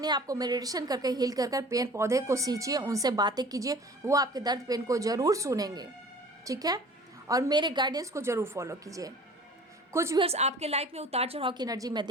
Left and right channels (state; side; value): normal; both; correlation 0.45